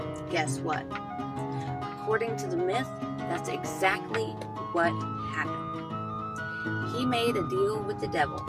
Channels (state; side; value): identical; both; correlation 1.00